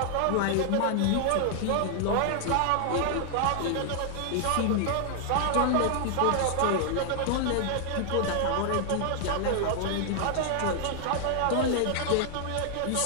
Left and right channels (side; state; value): both; different; correlation 0.00